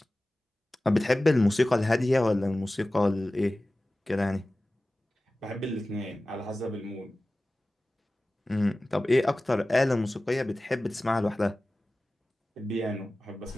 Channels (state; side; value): normal; both; correlation 0.97